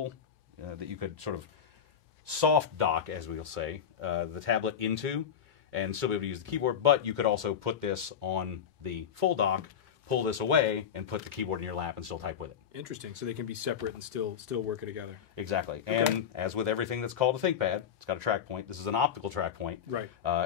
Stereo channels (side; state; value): right; quieter; 8.1 dB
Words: that you could sort of soft dock, as we'll say, the tablet into, and still be able to use the keyboard, but you could also put this on the full dock, pull this away, and put the keyboard in your lap and still type with it. Interesting. So they can be separate and still work it together. Exactly. Okay. And as with everything that's called a ThinkPad, it's got a track point. This is an optical track point. Right.